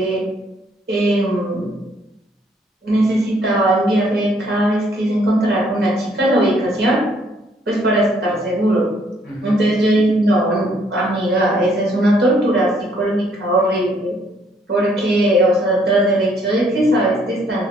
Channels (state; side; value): normal; both; correlation 0.66